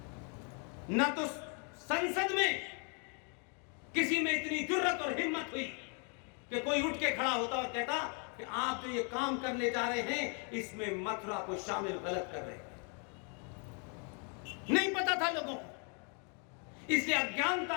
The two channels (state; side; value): quieter; right; 39.0 dB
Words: न तो संसद में किसी में इतनी जुर्रत और हिम्मत हुई कि कोई उठ के खड़ा होता और कहता कि आप जो ये काम करने जा रहे हैं इसमें मथुरा को शामिल गलत कर रहे हैं। नहीं पता था लोगों को, इसलिए